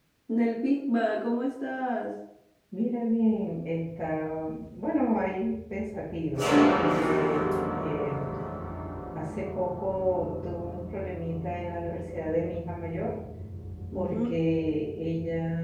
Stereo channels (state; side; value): identical; both; correlation 1.00